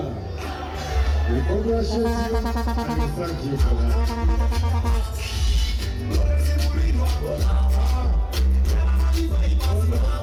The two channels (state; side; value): identical; both; correlation 1.00